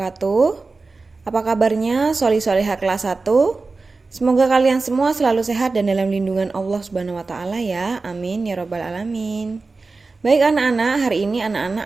Apa kabarnya soli-solihah kelas 1? Semoga kalian semua selalu sehat dan dalam lindungan Allah Subhanahu wa taala ya. Amin ya rabbal alamin. Baik anak-anak, hari ini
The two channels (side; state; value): left; quieter; 3.8 dB